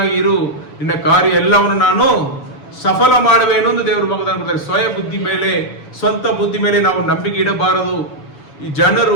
ಇರು, ನಿನ್ನ ಕಾರ್ಯ ಎಲ್ಲವನ್ನು ನಾನು ಸಫಲ ಮಾಡುವೇನು ಎಂದು ದೇವರು ವಾಗ್ದಾನ ಕೊಡ್ತಾರೆ. ಸ್ವಯ ಬುದ್ಧಿ ಮೇಲೆ, ಸ್ವಂತ ಬುದ್ಧಿ ಮೇಲೆ ನಾವು ನಂಬಿಕೆ ಇಡಬಾರದು. ಈ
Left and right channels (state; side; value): late; right; 7.0 ms